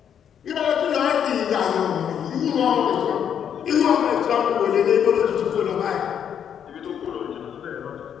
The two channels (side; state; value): right; quieter; 8.6 dB